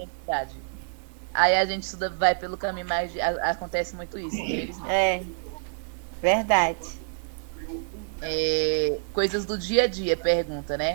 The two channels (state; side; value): silent; left; digital silence